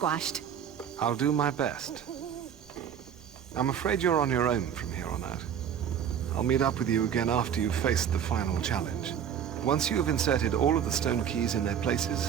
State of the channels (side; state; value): left; quieter; 8.6 dB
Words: I'll do my best. I'm afraid you're on your own from here on out. I'll meet up with you again after you've faced the final challenge. Once you have inserted all of the stone keys in their